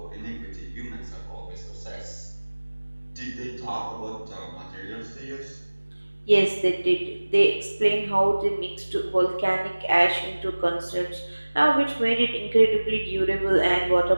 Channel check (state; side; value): inverted; both; correlation -1.00